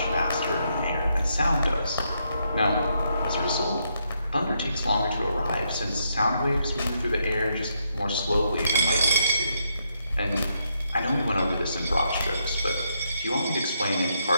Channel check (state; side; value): inverted; both; correlation -0.78